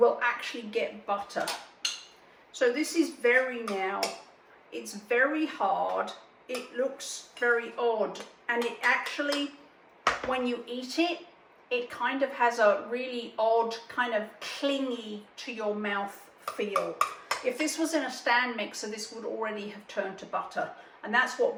actually get butter. So this is it's very hard, it looks very odd, and it actually, when you eat it, it kind of has a really odd, kind of clingy to your mouth feel. If this was in a stand mixer, this would already have turned to butter. And that's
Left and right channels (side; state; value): both; identical; correlation 1.00